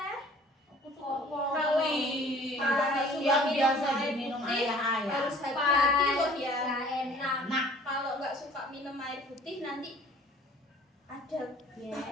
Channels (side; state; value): both; normal; correlation 0.51